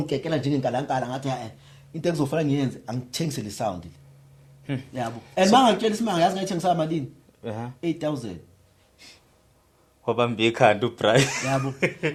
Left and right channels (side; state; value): both; identical; correlation 1.00